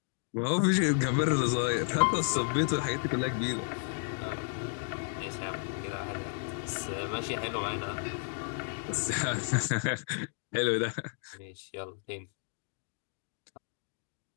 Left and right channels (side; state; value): right; silent; 56 dB below the other